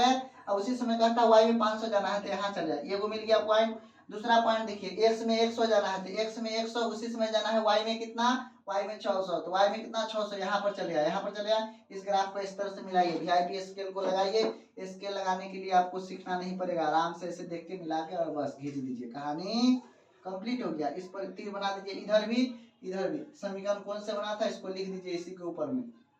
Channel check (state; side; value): identical; both; correlation 1.00